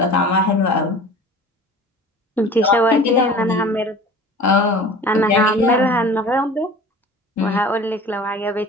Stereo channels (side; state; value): both; normal; correlation 0.41